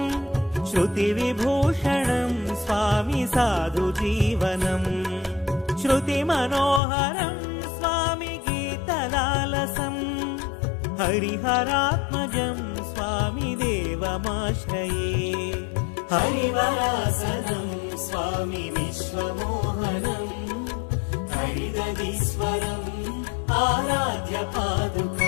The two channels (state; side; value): drops out; right; at 6.8 s